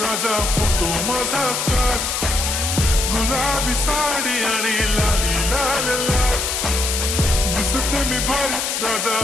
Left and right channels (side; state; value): left; noise; hiss, 1 dB below the sound